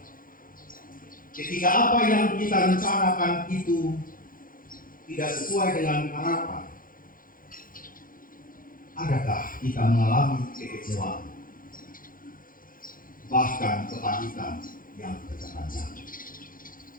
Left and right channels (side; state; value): right; late; 0.40 ms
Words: ketika apa yang kita rencanakan itu tidak sesuai dengan harapan? Adakah kita mengalami kekecewaan, bahkan kepahitan yang berkepanjangan?